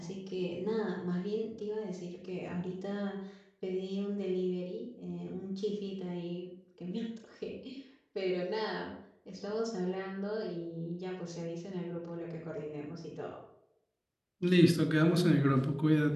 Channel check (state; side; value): identical; both; correlation 1.00